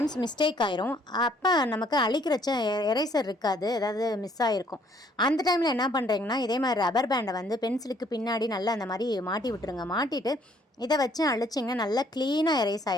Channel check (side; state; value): both; normal; correlation 0.63